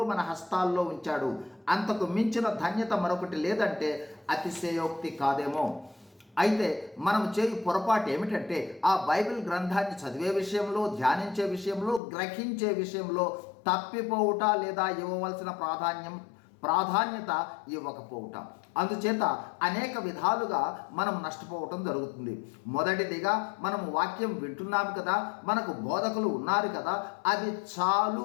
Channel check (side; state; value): right; drops out; at 12.0 s